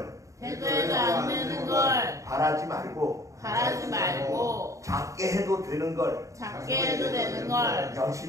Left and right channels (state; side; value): late; left; 0.15 ms